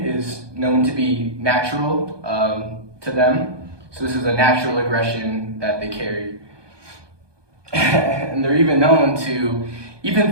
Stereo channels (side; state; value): left; late; 1.2 ms